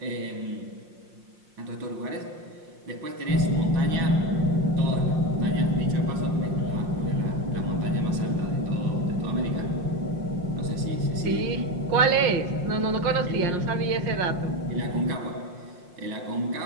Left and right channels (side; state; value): left; late; 5.6 ms